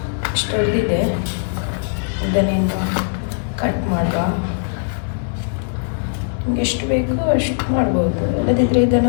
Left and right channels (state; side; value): silent; right; 66 dB below the other